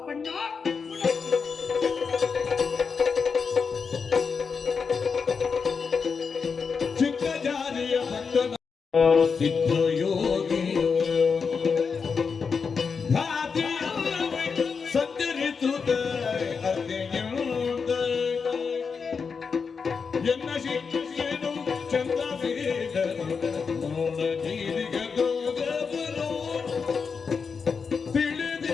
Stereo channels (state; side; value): quieter; right; 5.5 dB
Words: ಚಿಕ್ಕ ಜಾರಿಯ ಭಕ್ತನ ಸಿದ್ಧ ಯೋಗಿ ಸಂಚರಿಸುತ್ತ ಎನ್ನ ಶಿಕ್ಷೆನು ಚಂದ ತಿಳಿದಿರು